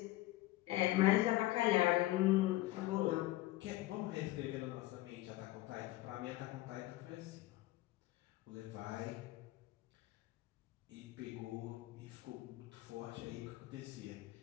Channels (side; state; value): right; quieter; 17.6 dB